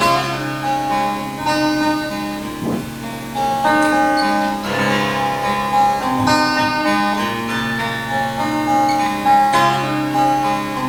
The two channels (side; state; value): both; identical; correlation 1.00